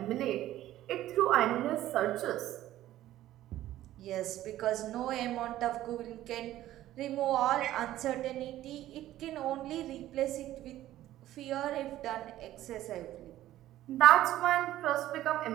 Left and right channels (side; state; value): left; quieter; 14.0 dB